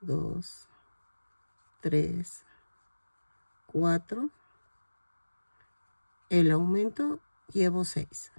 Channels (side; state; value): both; inverted; correlation -1.00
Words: 2, 3, 4, el aumento llevo 6